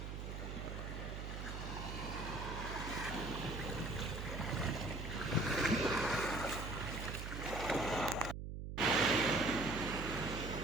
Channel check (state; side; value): noise; right; hum, 6 dB below the sound